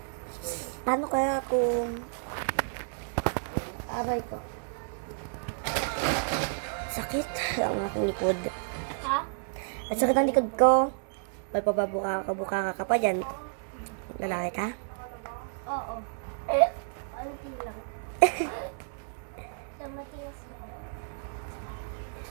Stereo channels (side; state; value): left; silent; 57 dB below the other